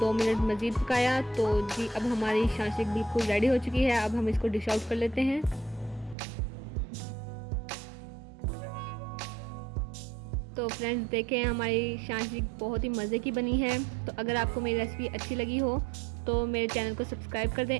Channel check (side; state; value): left; drops out; at 6.2 s